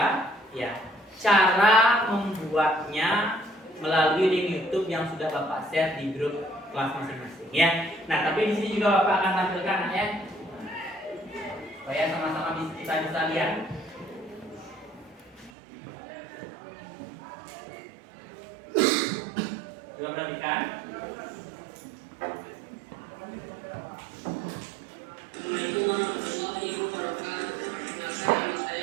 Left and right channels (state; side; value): drops out; left; at 15.5 s